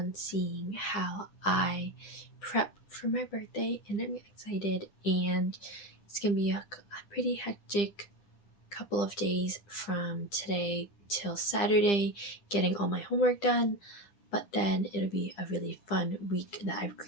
seeing how I prep for my birthday, and I'm excited, and it's gonna be a pretty hectic couple of days from today till Saturday getting all my homework done, but then it'll be a really fun week that I've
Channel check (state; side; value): late; right; 9.9 ms